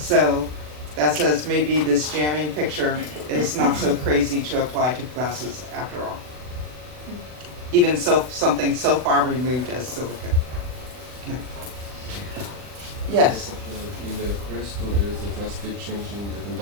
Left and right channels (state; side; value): late; left; 40 ms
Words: that says maybe this jamming picture is not so crazy to apply to glasses after all. Even so, something so far removed as silica. Okay. Yes? In the crystal, there's a drastic change in the